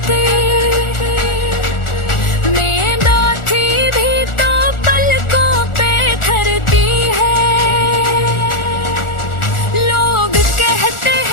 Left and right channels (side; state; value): right; late; 1.4 ms